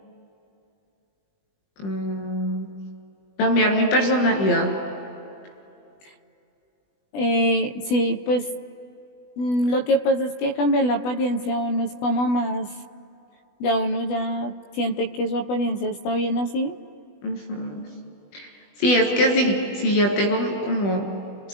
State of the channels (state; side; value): late; right; 20 ms